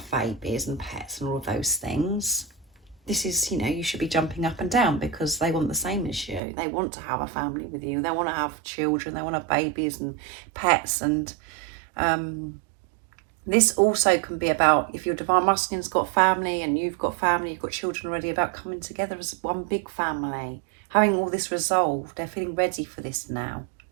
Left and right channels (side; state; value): left; drops out; at 6.4 s